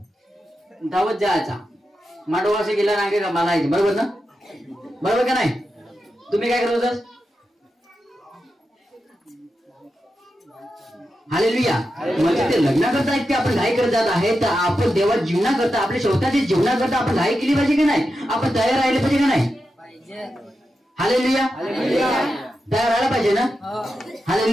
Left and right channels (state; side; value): normal; both; correlation 0.89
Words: धावत जायचा, मांडवा असे गेला रांगे का मला यायचे, बरोबर ना? बरोबर का नाही? तुम्ही काय करत होता? हालेलुया. म्हणजे ते लग्नाकरता इतके आपण घाई करत जात आहे, तर आपण देवा जीवनाकरता, आपल्या स्वतःच्या जीवनाकरता आपण घाई केली पाहिजे की नाही? आपण तयार राहिले पाहिजे का नाही? हालेलुया. तयार राहायला पाहिजे ना?